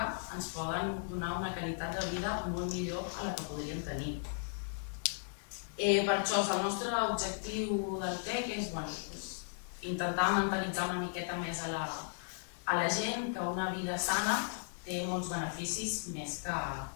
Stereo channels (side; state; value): right; silent; digital silence